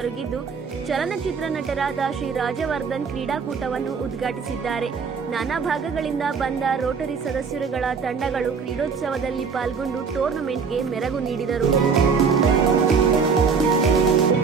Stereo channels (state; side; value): quieter; left; 5.7 dB